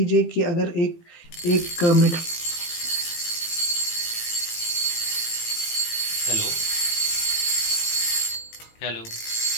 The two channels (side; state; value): right; late; 18 ms